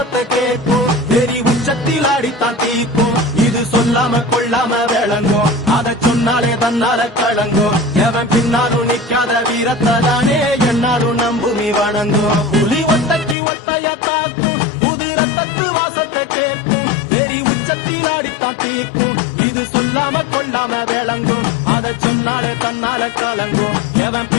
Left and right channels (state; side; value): drops out; right; at 13.4 s